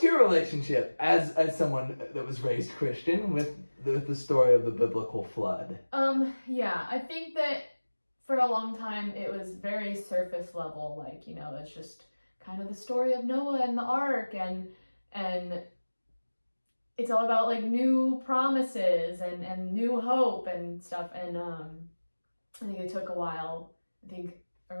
your relationship as someone that was raised Christian with the story of the biblical flood? Yeah, I think that for a long time it was very surface level, like, that's just kind of the story of Noah and the ark, and it's all about like new promises and new hope and stuff. And I think it took a while. I think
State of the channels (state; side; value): inverted; both; correlation -1.00